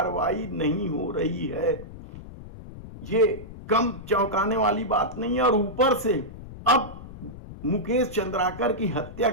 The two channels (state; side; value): noise; left; rumble, 14 dB below the sound